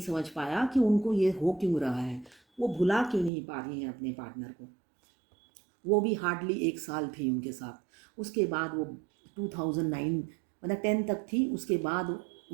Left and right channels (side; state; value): left; drops out; at 3.3 s